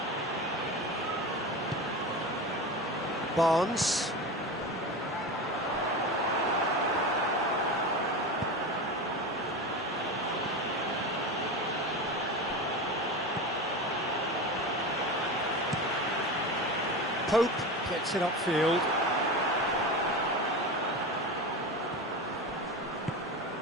Barnes. Coop gets it upfield.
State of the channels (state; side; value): normal; both; correlation 0.25